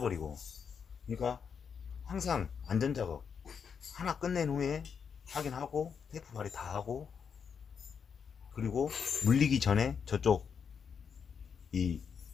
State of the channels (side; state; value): right; quieter; 6.7 dB